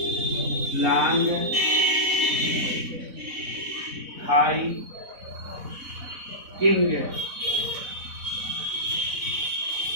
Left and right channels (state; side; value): late; left; 4.0 ms